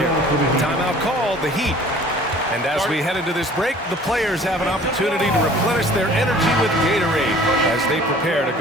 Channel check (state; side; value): normal; both; correlation 0.50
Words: Timeout called, the Heat. And as we head into this break, the players have an opportunity to replenish their energy with Gatorade as they prepare to